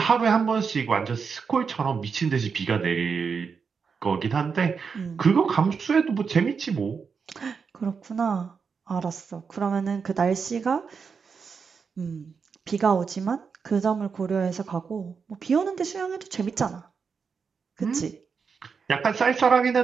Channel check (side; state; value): left; quieter; 5.7 dB